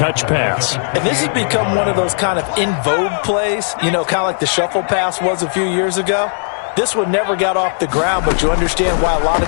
pass. And this has become one of those kind of in vogue plays, you know, kind of like the shuffle pass was a few years ago. This one never got off the ground, but you understand why a lot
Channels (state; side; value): silent; right; digital silence